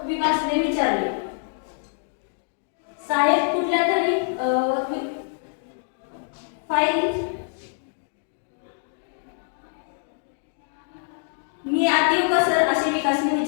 विकासने विचारले. साहेब कुठल्या तरी फाईल मी आत येऊ का सर असे विकासने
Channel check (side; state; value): right; silent; digital silence